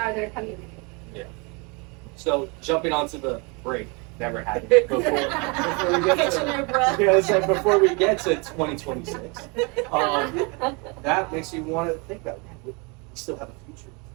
their community. So jumping onto the break that we're having before we get Catching to, your breath. yeah, it's like before we get to 2026, that makes you want to think that we still have a future to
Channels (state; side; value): quieter; left; 30.5 dB